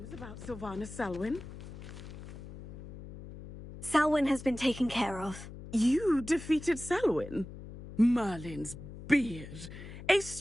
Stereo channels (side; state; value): left; noise; hum, 13 dB below the sound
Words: about Sylvana Selwyn? Selwyn has been taken care of. You defeated Selwyn? Merlin's beard. A